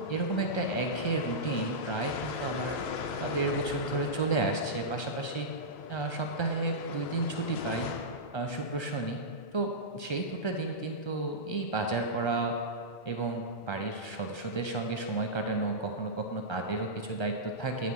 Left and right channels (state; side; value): late; right; 1.3 ms